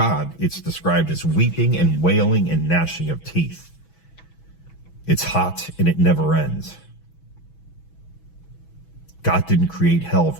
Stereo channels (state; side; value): late; right; 6.1 ms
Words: it's described as weeping and wailing and gnashing of teeth. It's hot and it never ends. God didn't create hell